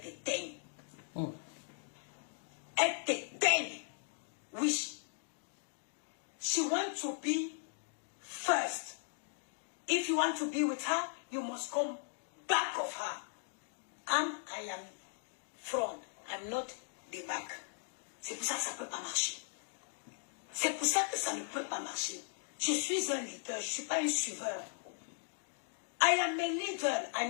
Elle t'éteigne. Oui. She wants to be first. If you want to be with her, you must come back of her. I am front. I'm not the back. C'est pour ça que ça ne peut pas marcher. C'est pour ça que ça ne peut pas marcher. Je suis un leader, je ne suis pas un suiveur. I am a leader,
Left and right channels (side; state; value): right; silent; digital silence